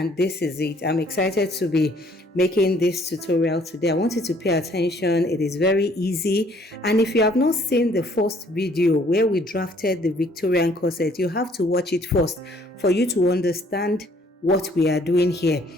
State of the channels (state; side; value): normal; both; correlation 0.61